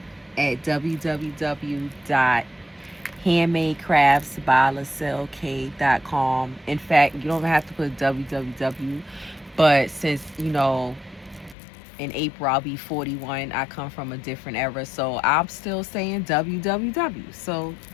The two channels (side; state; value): right; drops out; at 11.6 s